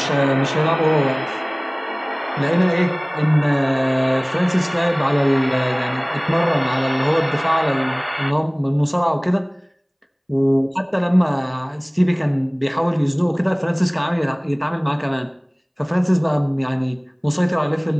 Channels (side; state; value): both; identical; correlation 1.00